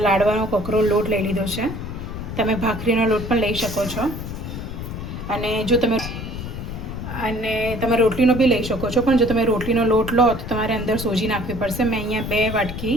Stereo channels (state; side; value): noise; left; rumble, 7 dB below the sound